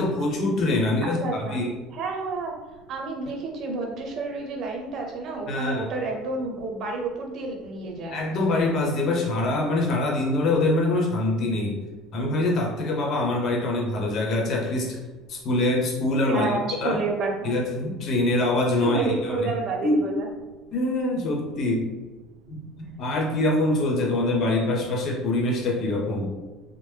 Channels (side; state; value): right; noise; rumble, 27 dB below the sound